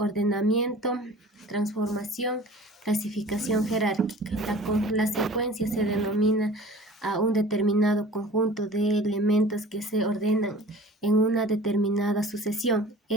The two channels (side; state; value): both; normal; correlation 0.44